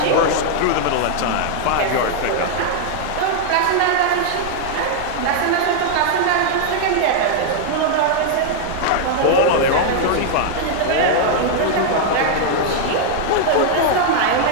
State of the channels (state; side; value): different; both; correlation -0.01